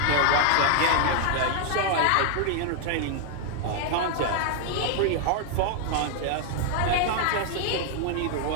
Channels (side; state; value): both; different; correlation 0.00